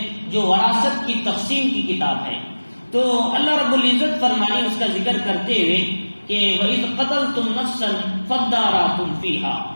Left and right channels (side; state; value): both; inverted; correlation -1.00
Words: جو وراثت کی تقسیم کی کتاب ہے۔ تو اللہ رب العزت فرمانے اس کا ذکر کرتے ہوئے کہ وَإِذْ قَتَلْتُمْ نَفْسًا فَادَّارَأْتُمْ فِيهَا،